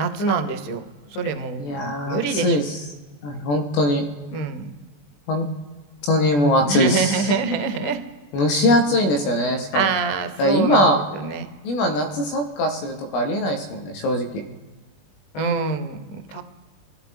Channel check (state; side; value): late; right; 21 ms